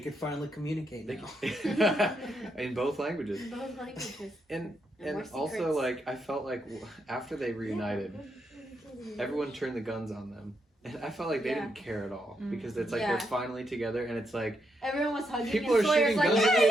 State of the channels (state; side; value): normal; both; correlation 0.80